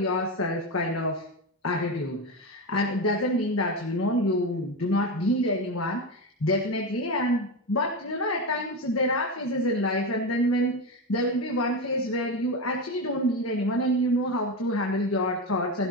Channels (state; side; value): normal; both; correlation 0.16